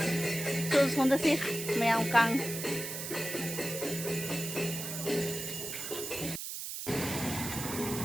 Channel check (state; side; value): noise; right; hiss, 6 dB below the sound